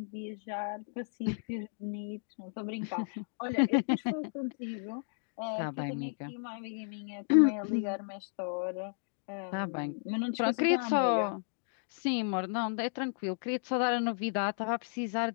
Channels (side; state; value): right; silent; digital silence